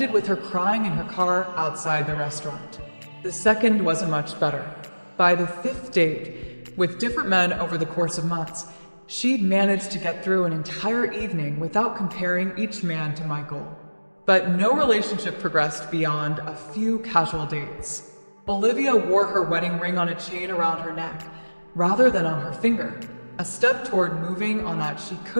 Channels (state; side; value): inverted; both; correlation -1.00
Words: with her crying in her car outside the restaurant. The second wasn't much better. By the 5th date, with different men over the course of months, she'd managed to get through an entire evening without comparing each man to Michael. But no relationship progressed beyond a few casual dates. Olivia wore her wedding ring on a chain around her neck, rather than on her finger, a step toward moving on that she